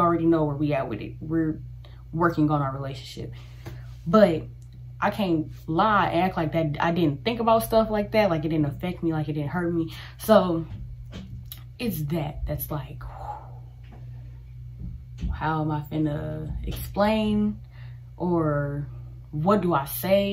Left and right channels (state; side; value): identical; both; correlation 1.00